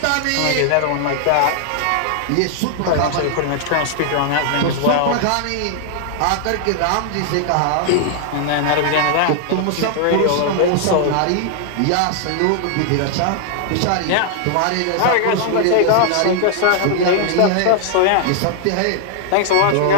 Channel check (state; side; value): different; both; correlation 0.00